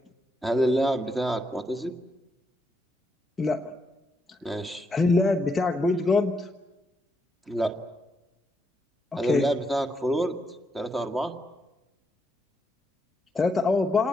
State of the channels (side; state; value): both; normal; correlation 0.81